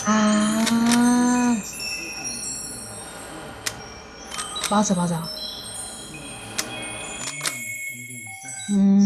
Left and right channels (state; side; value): identical; both; correlation 1.00